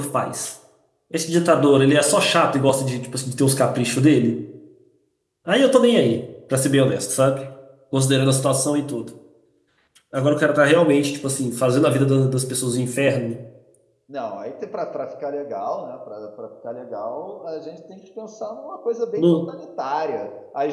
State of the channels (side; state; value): both; identical; correlation 1.00